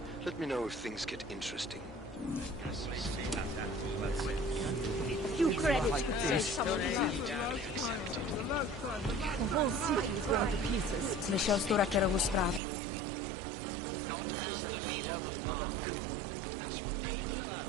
Let me know if things get interesting. Few credits could save someone life. The whole city is going to pieces. Slyšel jsi tu Rackerovu zprávu? Nevím, co si o něm máme myslet.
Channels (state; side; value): drops out; left; at 12.6 s